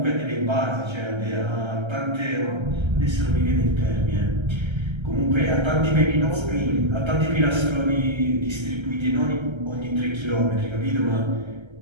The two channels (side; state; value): left; late; 1.3 ms